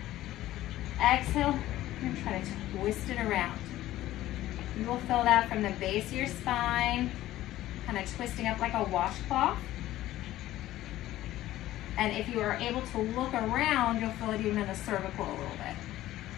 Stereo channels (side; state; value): right; quieter; 14.8 dB